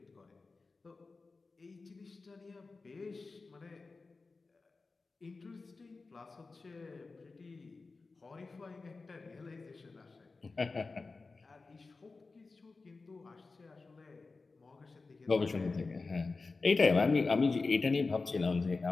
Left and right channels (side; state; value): right; quieter; 3.9 dB